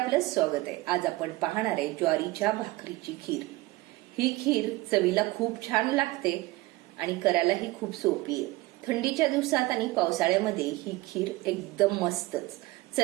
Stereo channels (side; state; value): left; quieter; 20.2 dB